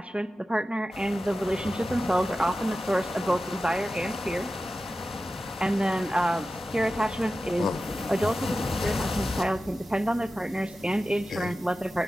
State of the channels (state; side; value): normal; both; correlation 0.94